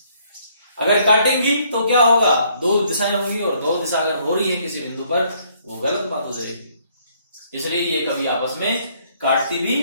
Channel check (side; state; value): both; inverted; correlation -0.66